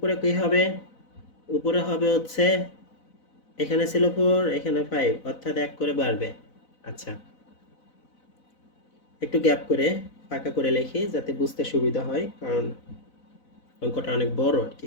কি হবে, উপরে হবে হচ্ছে এখানে ছিল 4, এখানে 5, অর্থাৎ 1 করে বাড়বে। আচ্ছা, একটু গ্যাপ করে ফাঁকা করে লিখি যাতে বুঝতে সুবিধা হয়, কারণ অঙ্কটা অনেক বড় আর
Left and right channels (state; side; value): late; right; 4.0 ms